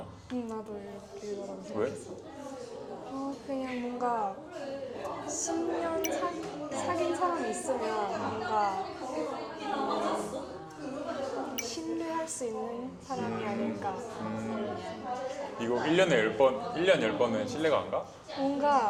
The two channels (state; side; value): identical; both; correlation 1.00